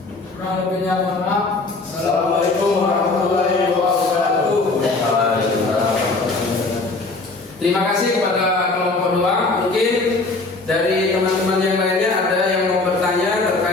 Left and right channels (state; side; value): quieter; right; 3.5 dB